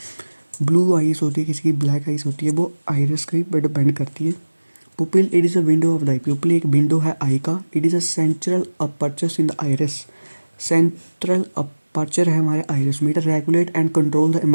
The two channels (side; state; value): both; inverted; correlation -1.00